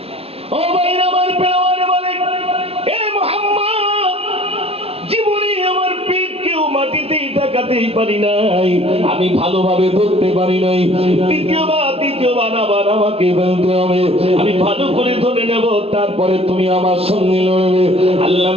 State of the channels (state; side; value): late; left; 0.29 ms